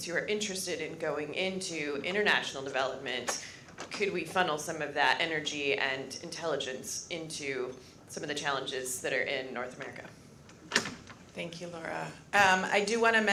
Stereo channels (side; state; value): both; identical; correlation 1.00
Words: who are interested in going into international development. Could we funnel some of that energy and intelligence into some of the challenges that are in North America? Thank you, Laura. I do want to